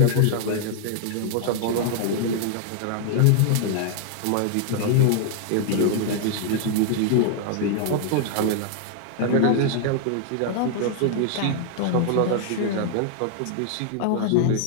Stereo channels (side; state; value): both; different; correlation 0.00